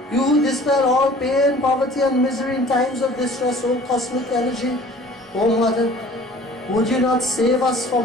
you who dispel all pain, poverty and misery in times of distress, O cosmic energy. O Mother, would you not save us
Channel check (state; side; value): normal; both; correlation 0.49